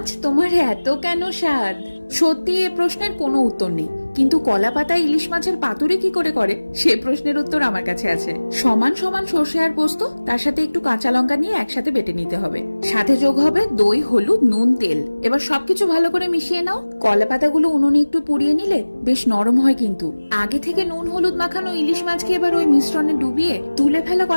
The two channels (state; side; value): inverted; both; correlation -1.00